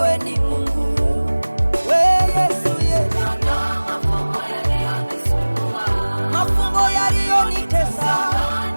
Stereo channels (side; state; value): both; inverted; correlation -1.00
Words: ni Mungu, wewe Yesu, mafumbo yaliyonitesa,